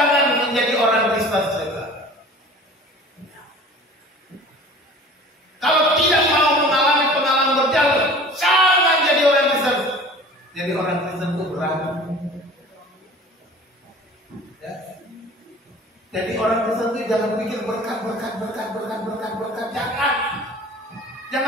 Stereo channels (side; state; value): both; normal; correlation 0.43